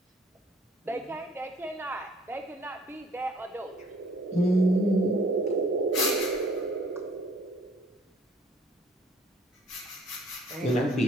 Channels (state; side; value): normal; both; correlation 0.57